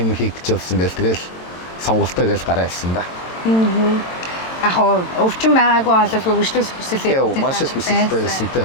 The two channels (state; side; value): late; right; 22 ms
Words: хийх гэж болсон гэл тэгэл сонголтоо гэж гараа хэлсэн да. Яг өвчин байгаагүй болов хөгжлөх хүсэлээ. Маш их хүсэлтэй байсан те